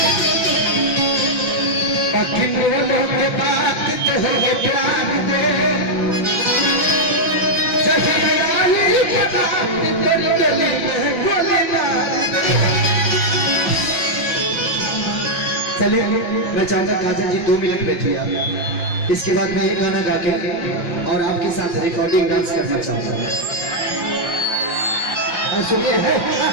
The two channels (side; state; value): right; late; 5.8 ms